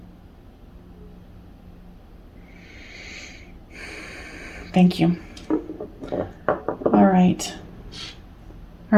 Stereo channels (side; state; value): both; identical; correlation 1.00